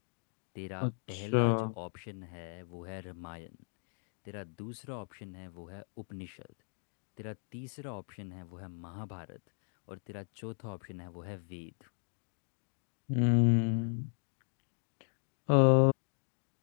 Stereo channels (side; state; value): right; silent; digital silence